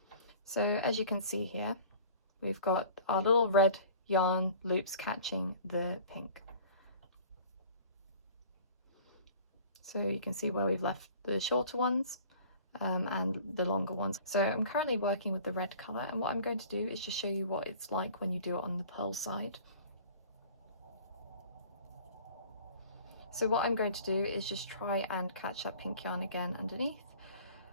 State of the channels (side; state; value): both; inverted; correlation -0.46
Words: So as you can see here, we've got our little red yarn loops catching the pink. So you can see where we've left the shorter ones and the longer ones. So I'm currently working with the red colour, and what I'm going to do is just show you what it's like when you do it on the purl side. So what I'm going to do is just try and catch that pink yarn again underneath.